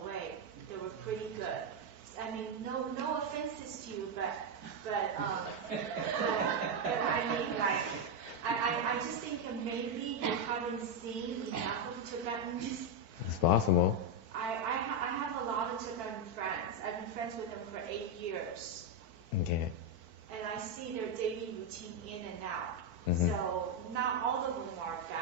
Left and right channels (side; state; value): left; late; 4.5 ms